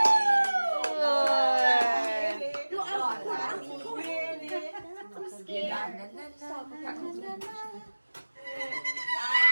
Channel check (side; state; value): both; inverted; correlation -1.00